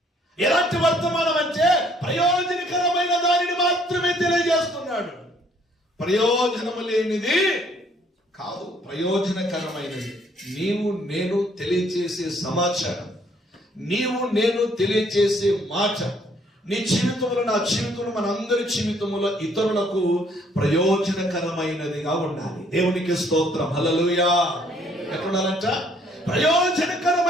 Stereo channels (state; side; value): normal; both; correlation 0.64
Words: ఎలాంటి వర్తమానం అంటే ప్రయోజనకరమైన దానిని మాత్రమే తెలియజేస్తున్నాడు. ప్రయోజనము లేనిది కాదు, ప్రయోజనకరమైనది. నీవు నేను తెలియచేసే సమాచారం, నీవు నేను తెలియచేసే మాట నీ జీవితంలో, నా జీవితంలో, మనందరి జీవితంలో ఇతరులకు ప్రయోజనకరమైనదిగా ఉండాలి. దేవునికి స్తోత్రం, హల్లెలూయా. ఎట్లుండాలంట?